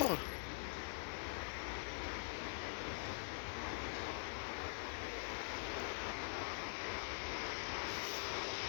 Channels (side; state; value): right; silent; digital silence